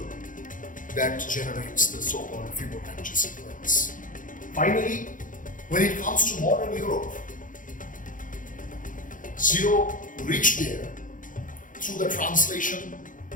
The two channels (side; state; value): right; late; 0.38 ms